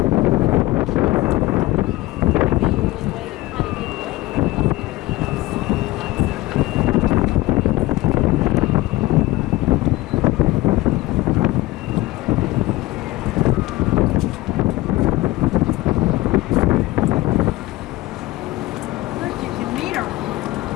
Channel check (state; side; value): quieter; right; 18.0 dB